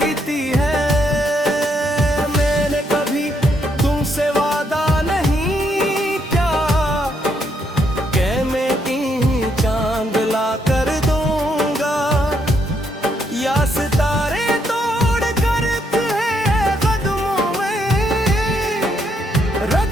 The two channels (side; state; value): both; normal; correlation 0.75